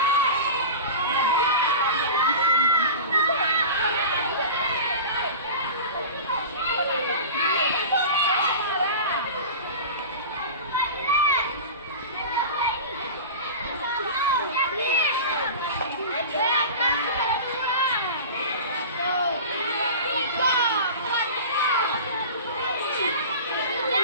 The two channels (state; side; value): inverted; both; correlation -0.32